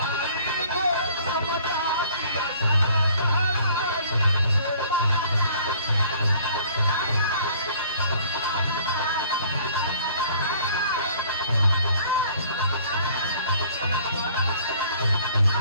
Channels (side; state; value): both; inverted; correlation -0.55